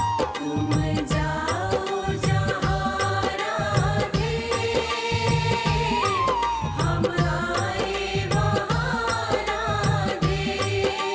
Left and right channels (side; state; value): both; identical; correlation 1.00